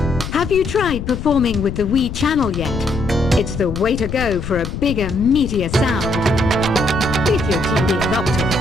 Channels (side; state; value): left; noise; rumble, 7 dB below the sound